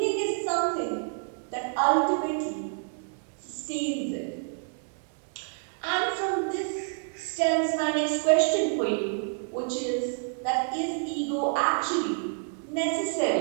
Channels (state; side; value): silent; left; 59 dB below the other